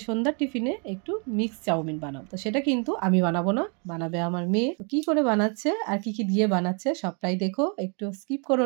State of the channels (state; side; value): quieter; left; 37.1 dB